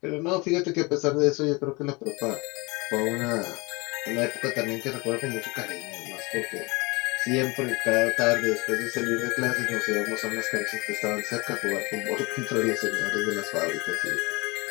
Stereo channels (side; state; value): right; quieter; 26.0 dB